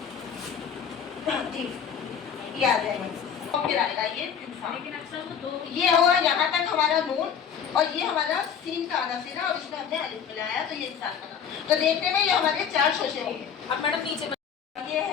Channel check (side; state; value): right; quieter; 7.6 dB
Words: ठीक, ये आ जाएगा, और फिर आएगा ये इंसान। लेकिन अक्सर तो दो ये हुआ यहाँ तक हमारा नून, और ये हमारा सीन का आधा सिरा, और इसमें हमने अलिफ मिलाया तो ये इंसान बना। तो देखने में ये हमारे 4 शोशे हो गए। अब मैडम नीचे ये